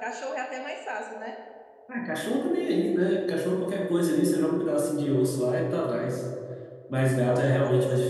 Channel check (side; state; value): both; identical; correlation 1.00